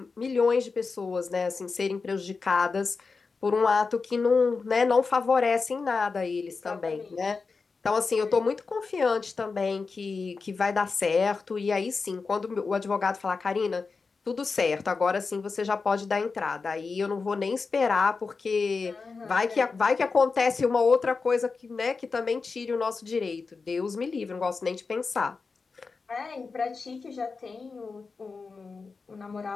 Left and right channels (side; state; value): right; quieter; 4.5 dB